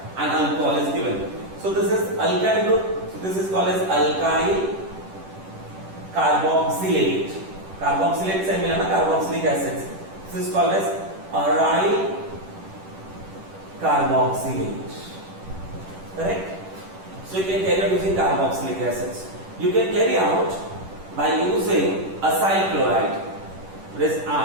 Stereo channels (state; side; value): late; left; 10 ms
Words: and alcohol is given. So this is alkyl group. So this is called as alkyl carboxylate. Carboxylate से मिला ना carboxylic acids. This is called as aryl carboxylate. Correct? So you can carry out using carboxylic acids. You can carry out by using acyl chloride. This